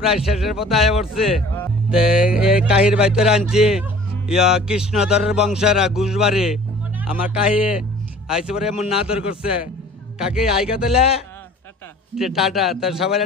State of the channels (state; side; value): normal; both; correlation 0.48